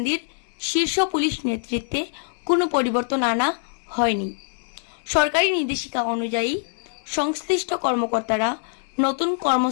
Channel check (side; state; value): right; silent; digital silence